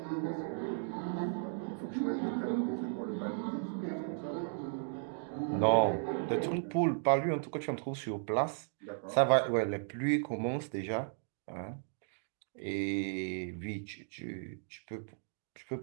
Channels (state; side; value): silent; left; digital silence